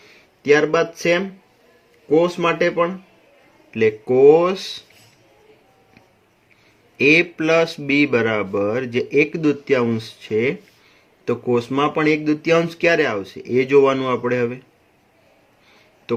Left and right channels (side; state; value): both; identical; correlation 1.00